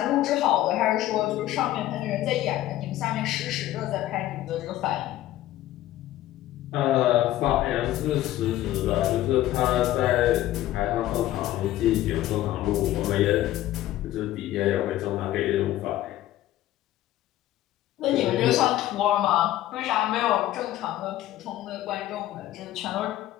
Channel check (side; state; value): right; quieter; 14.3 dB